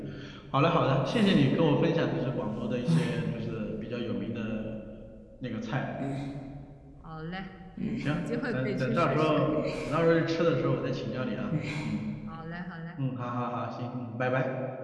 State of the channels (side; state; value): both; identical; correlation 1.00